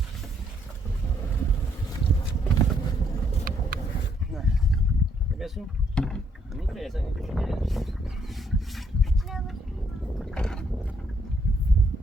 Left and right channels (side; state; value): both; normal; correlation 0.70